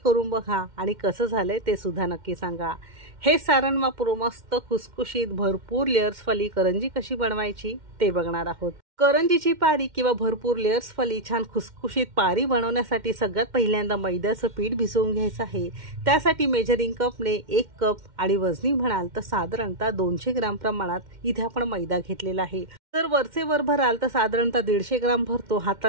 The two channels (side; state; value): left; late; 2.1 ms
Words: बघा आणि कसं झालंय ते सुद्धा नक्की सांगा। हे सारण वापरून मस्त खुसखुशीत भरपूर लेयर्सवाली करंजी कशी बनवायची ते बघणार आहोत। करंजीची पारी किंवा भरपूर लेयर्सवाली छान खुसखुशीत पारी बनवण्यासाठी सगळ्यात पहिल्यांदा मैद्याचं पीठ भिजवून घ्यायचं आहे। त्यासाठी मेजरिंग कपने 1 कप आणि वजनी म्हणाल तर साधारणतः 200 ग्राम प्रमाणात इथे आपण मैदा घेतलेला आहे। जर वरचे वर भराल तर साधारणतः 150 ग्राम भरतो,